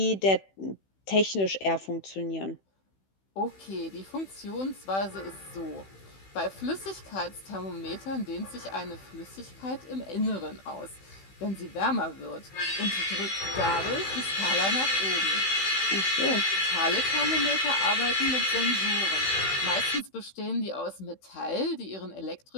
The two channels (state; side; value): late; right; 15 ms